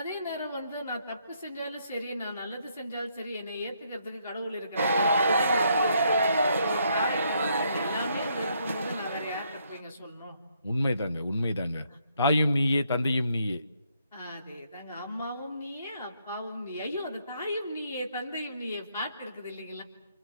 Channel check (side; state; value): both; inverted; correlation -0.73